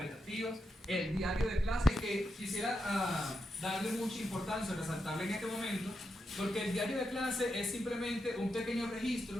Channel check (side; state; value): both; normal; correlation 0.85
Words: el diario de clase, que quisiera darle mucha importancia, resaltarle en este momento, porque el diario de clase es simplemente un pequeño